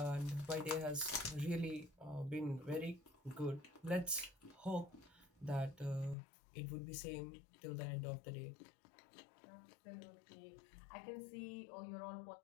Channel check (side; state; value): right; drops out; at 6.2 s